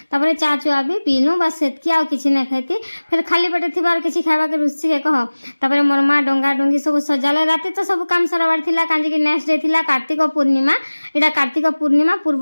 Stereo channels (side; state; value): both; inverted; correlation -1.00